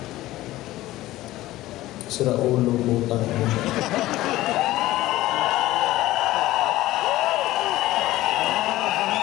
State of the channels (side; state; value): right; quieter; 16.5 dB